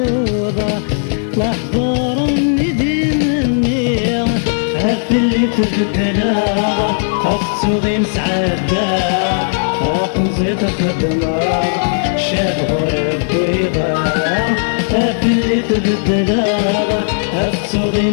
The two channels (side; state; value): right; silent; digital silence